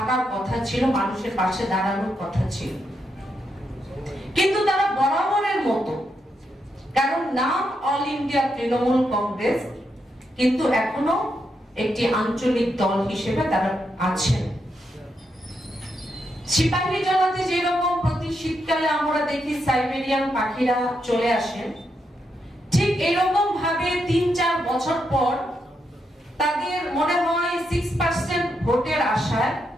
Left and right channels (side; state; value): both; normal; correlation 0.82